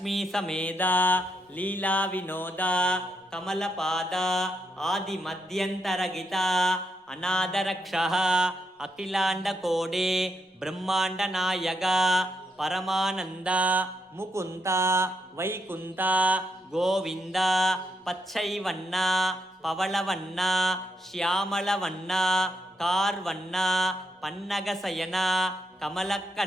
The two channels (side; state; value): both; normal; correlation 0.80